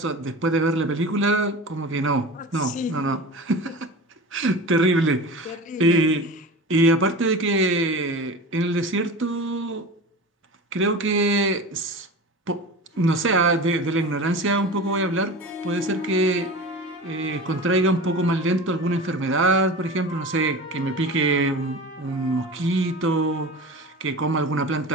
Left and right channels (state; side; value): normal; both; correlation 0.32